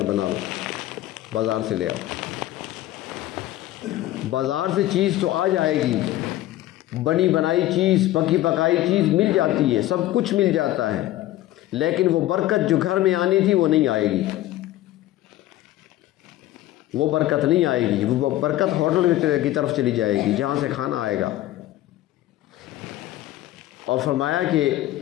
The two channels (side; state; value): right; quieter; 15.0 dB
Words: بنا لو، بازار سے لے آؤ. بازار سے چیز تو آ جائے گی، بنی بنائی چیز، پکی پکائی چیز مل جاتی ہے، سب کچھ مل جاتا ہے، لیکن وہ برکت جو گھر میں آنی تھی وہ نہیں آئے گی. وہ برکت نہیں آئے گی. وہ برکت ہوٹل کی طرف چلی جائے گی جہاں سے کھانا آئے گا. اور فرمایا کہ